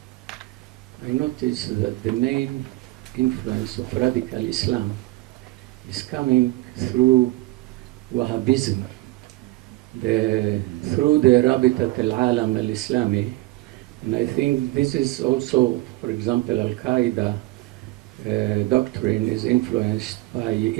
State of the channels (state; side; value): quieter; left; 19.1 dB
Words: I noticed that the main influence of radical Islam is coming through Wahhabism, through the Rabitat al-Alam al-Islami. And I think this is also, for example, Al-Qaeda doctrine is influenced by